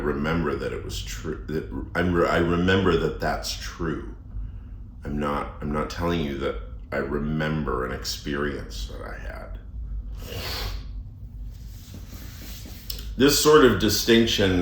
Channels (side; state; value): both; identical; correlation 1.00